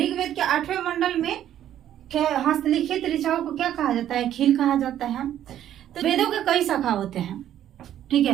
के 8वें मंडल में हस्तलिखित ऋचाओं को क्या कहा जाता है? खील कहा जाता है। तो वेदों के कई शाखा होते हैं। ठीक है,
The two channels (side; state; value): left; quieter; 11.2 dB